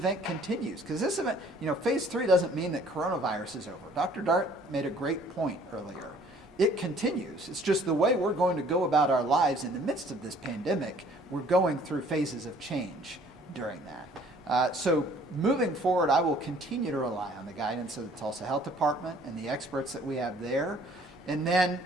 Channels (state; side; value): normal; both; correlation 0.56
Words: continues. Because this event, phase 3 doesn't mean that coronavirus is over. Dr. Dart made a great point earlier. It continues. It's just the way we're going to go about our lives in the midst of this pandemic. We're going through phases of change during that. So moving forward, I will continue to rely on the guidance of the Tulsa Health Department and the experts that we have there. And then,